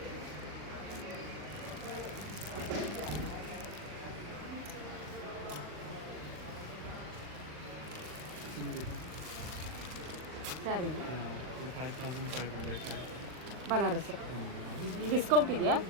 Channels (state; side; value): late; left; 40 ms